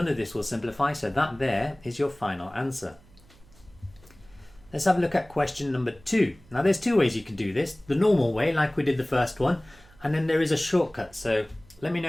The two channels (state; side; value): noise; right; hum, 26 dB below the sound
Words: of this will simplify, so that there is your final answer. Let's have a look at question number 2. Now there's two ways you can do this. The normal way, like we did the first one, and then there is a shortcut. So let me know